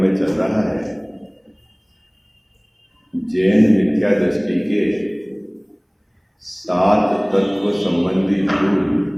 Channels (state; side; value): identical; both; correlation 1.00